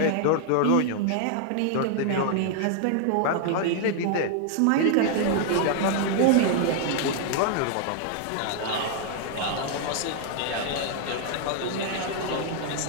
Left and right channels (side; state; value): both; different; correlation 0.00